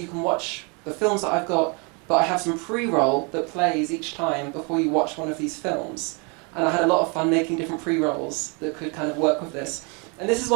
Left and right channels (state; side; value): quieter; left; 32.9 dB